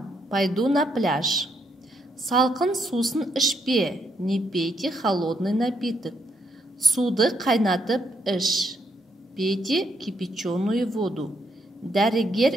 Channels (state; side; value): normal; both; correlation 0.74